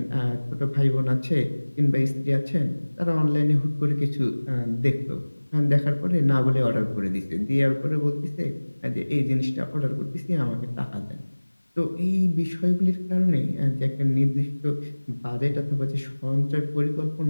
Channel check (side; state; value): both; inverted; correlation -1.00